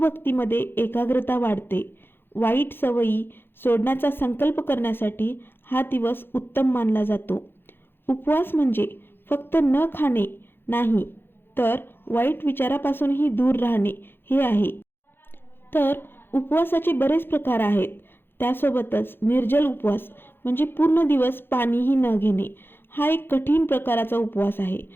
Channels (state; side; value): late; right; 0.10 ms